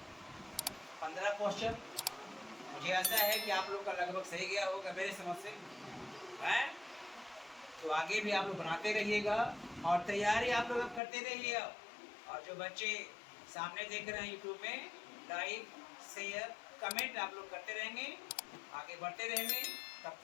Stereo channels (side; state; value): right; drops out; at 11.0 s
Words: 15 क्वेश्चन, मुझे आशा है कि आप लोग का लगभग सही गया होगा मेरे समझ से, है? तो आगे भी आप लोग बनाते रहिएगा और तैयारी आप लोग करते रहिए। और जो बच्चे सामने देख रहे हैं यूट्यूब में, लाइक शेयर कमेंट आप लोग करते रहेंगे, आगे बढ़ते रहेंगे। तब